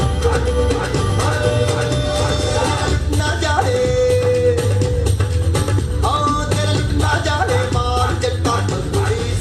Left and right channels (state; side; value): identical; both; correlation 1.00